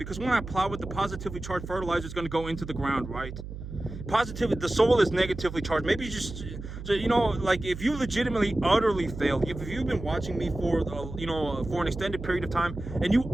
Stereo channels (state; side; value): noise; right; hum, 10 dB below the sound